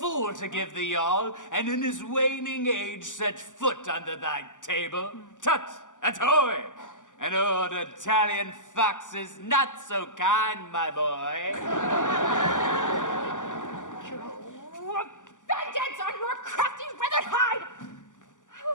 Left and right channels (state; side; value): late; right; 0.87 ms